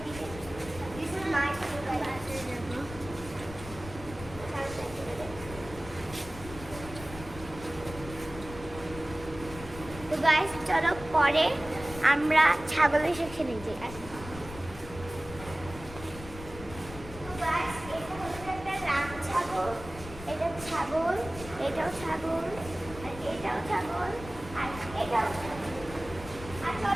দিবে। দিস ইজ মাই তো গাইস চলো পরে আমরা ছাগলের সাথে নিয়ে যাই। আসো তো গাইস এটা হচ্ছে একটা রাম ছাগল, এটা ছাগল, এটাও ছাগল, আর এটাও ছাগল, আর এটাও ছাগল। আর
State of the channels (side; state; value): left; noise; rumble, 13 dB below the sound